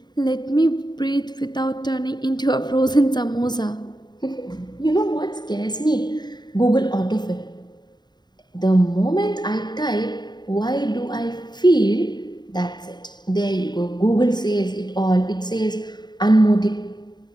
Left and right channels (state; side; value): late; right; 0.21 ms